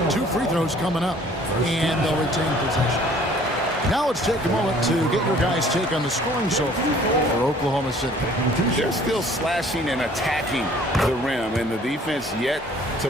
2 free throws coming up, and they'll retain possession. Now let's take a moment to get your guys' take on the scoring so far for Oklahoma City. They're still slashing and attacking the rim, and the defense yet to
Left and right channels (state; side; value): normal; both; correlation 0.55